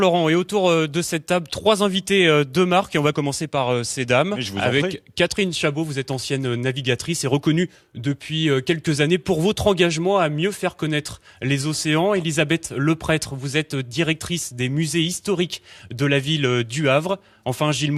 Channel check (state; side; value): identical; both; correlation 1.00